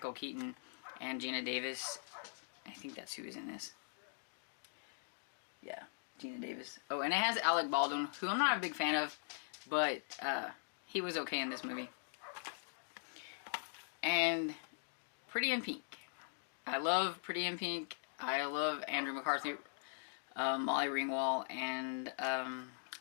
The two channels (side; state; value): right; silent; digital silence